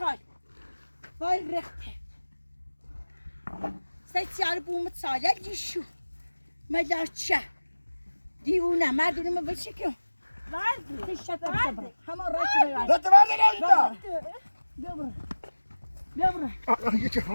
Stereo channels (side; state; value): both; inverted; correlation -1.00